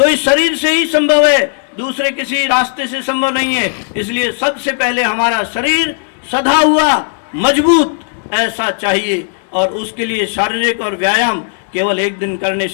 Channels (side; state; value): right; silent; digital silence